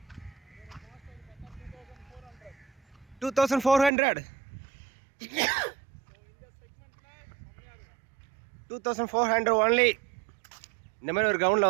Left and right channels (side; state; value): left; drops out; at 3.9 s